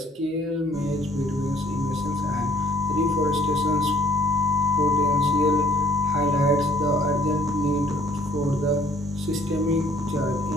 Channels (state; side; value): normal; both; correlation 0.61